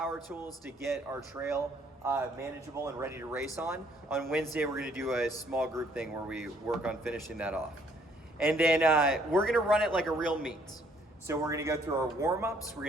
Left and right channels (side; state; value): both; normal; correlation 0.64